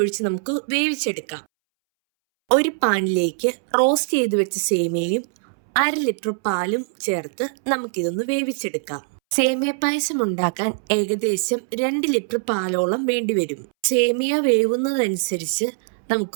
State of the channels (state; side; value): silent; left; 64 dB below the other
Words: നമുക്ക് വേവിച്ചെടുക്കാം. ഒരു പാനിലേക്ക് റോസ്റ്റ് ചെയ്ത് വെച്ച സേമിയയും 1/2 ലിറ്റർ പാലും ചേർത്ത് നമുക്കിതൊന്ന് വേവിച്ചെടുക്കാം. സേമിയ പായസം ഉണ്ടാക്കാൻ ഏകദേശം 2 ലിറ്റർ പാലോളം വേണ്ടിവരും. സേമിയ വേവുന്നതനുസരിച്ച്